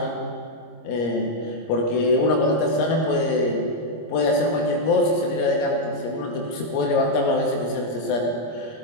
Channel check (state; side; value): late; right; 26 ms